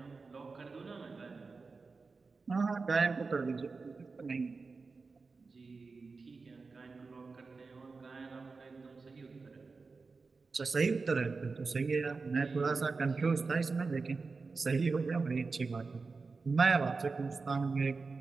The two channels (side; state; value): left; quieter; 4.3 dB